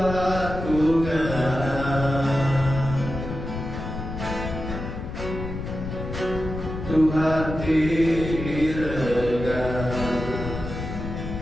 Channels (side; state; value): left; noise; rumble, 6 dB below the sound